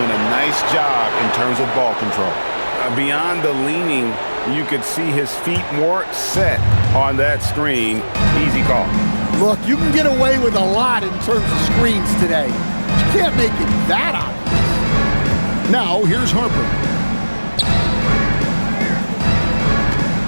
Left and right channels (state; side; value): inverted; both; correlation -1.00